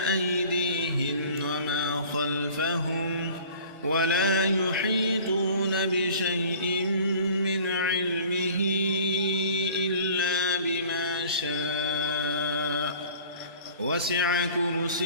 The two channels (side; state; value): both; inverted; correlation -0.47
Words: وما خلفهم ولا يحيطون بشيء من علمه إلا بما شاء وسع